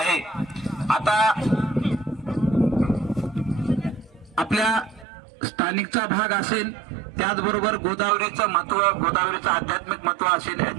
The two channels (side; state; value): left; drops out; at 5.1 s